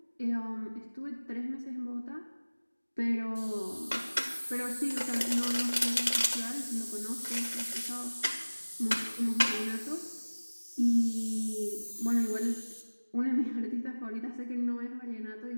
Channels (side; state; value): both; inverted; correlation -1.00